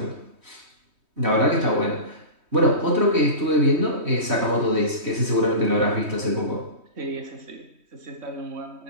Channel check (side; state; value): left; late; 3.2 ms